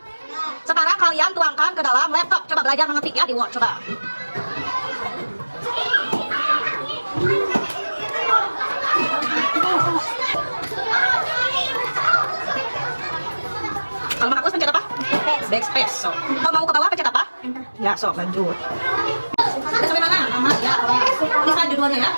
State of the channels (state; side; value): inverted; both; correlation -1.00